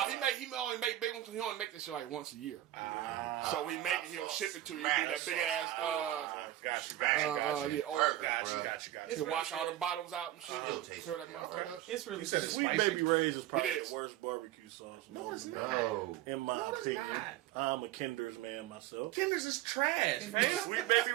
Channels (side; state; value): left; quieter; 13.9 dB